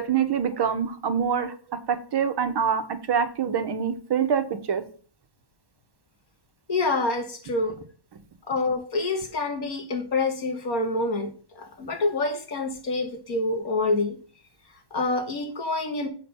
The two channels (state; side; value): late; left; 1.1 ms